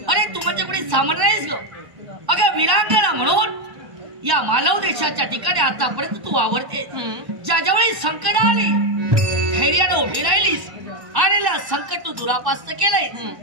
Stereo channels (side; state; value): left; late; 1.1 ms